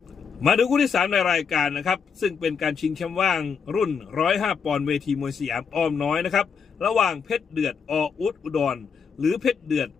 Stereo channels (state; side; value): quieter; right; 6.2 dB